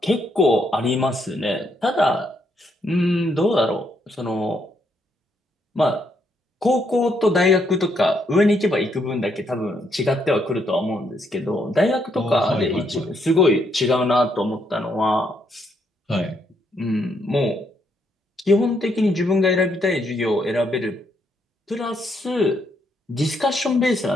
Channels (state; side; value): normal; both; correlation 0.75